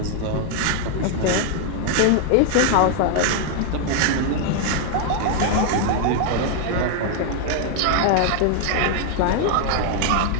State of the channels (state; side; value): different; both; correlation 0.00